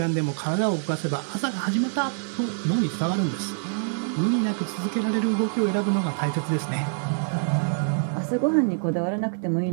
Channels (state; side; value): silent; left; digital silence